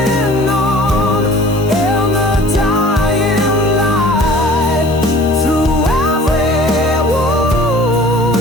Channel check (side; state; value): both; normal; correlation 0.47